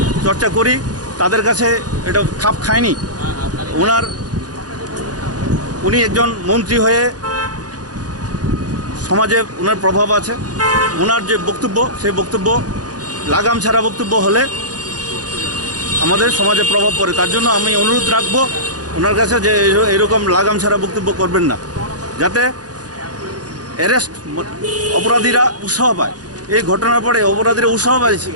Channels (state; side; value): late; left; 0.68 ms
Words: করি তাদের কাছে এটা খাপ খায়নি। উনি একজন মন্ত্রী হয়ে সমাজে ওনার প্রভাব আছে। ওনার যে বক্তব্য সেই বক্তব্য লাগাম ছাড়া বক্তব্য হলে আমাদের সমাজে প্রভাব পড়ে। তার জন্য আমি অনুরোধ রাখবো ওনার কাছে যে এরকম লাগাম ছাড়া বক্তব্য করবেন না, যাতে অ্যারেস্ট অপরাধীরা উৎসাহ পায়। এই ঘটনার পরে অপরাধীরা